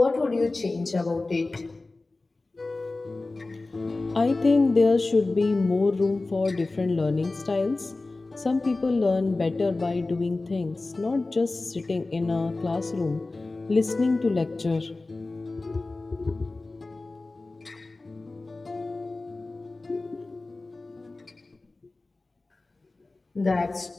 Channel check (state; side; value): quieter; right; 3.3 dB